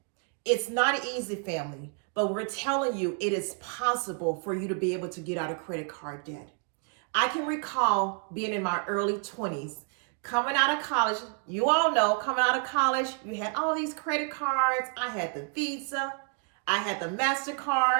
It's not easy, family, but we're telling you it is possible for you to be able to get out of credit card debt. I can recall being in my early 20s, coming out of college. You all know, coming out of college, you had all these credit cards. I had the Visa, I had the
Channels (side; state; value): left; quieter; 39.7 dB